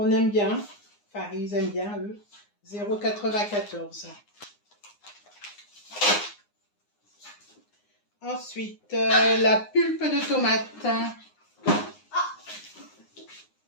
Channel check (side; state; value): right; late; 9.7 ms